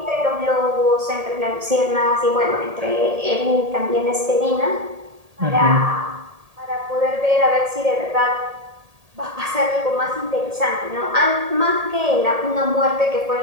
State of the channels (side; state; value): left; late; 1.8 ms